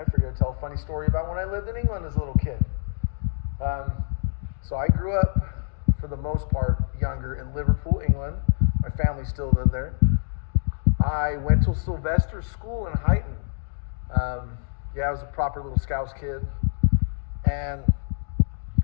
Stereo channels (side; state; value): right; silent; digital silence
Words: figured I'd tell a funny story about when I lived in England as a little kid. So I grew up, for the most part, younger in Liverpool, England. My family still lived there. I went to Sylvester school in Huyton. I was a proper little Scouts kid. And